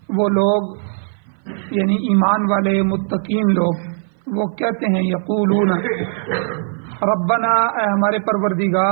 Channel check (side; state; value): left; silent; 57 dB below the other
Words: وہ لوگ یعنی ایمان والے متقین لوگ وہ کہتے ہیں یقولون ربنا، اے ہمارے